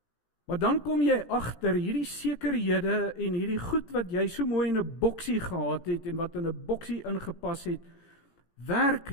Maar dan kom jy agter hierdie sekerhede en hierdie goed wat jy so mooi in 'n boksie gehad het en wat in 'n boksie ingepas het,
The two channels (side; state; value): right; late; 18 ms